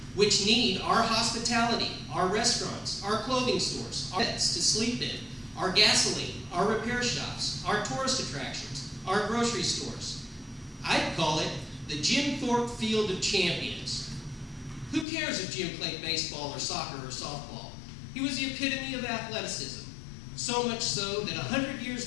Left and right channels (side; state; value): right; drops out; at 15.1 s